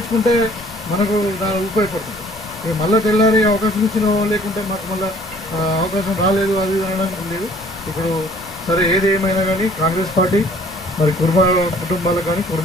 మనకు దాని ఉపయోగపడుతుంది. ఇక మళ్ళీ తెల్లారి అవకాశం ఇచ్చిన లేకుంటే మాకు మళ్ళీ అవకాశం రాలేదు అది అనడానికి లేదు. ఇప్పుడు సరే ఏది ఏమైనా కానీ కాంగ్రెస్ పార్టీ మరి కుర్మా కుటుంబాలకు కానీ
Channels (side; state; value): both; normal; correlation 0.56